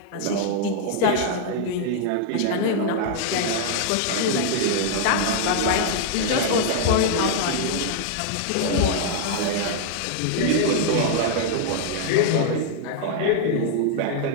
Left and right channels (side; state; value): both; different; correlation -0.01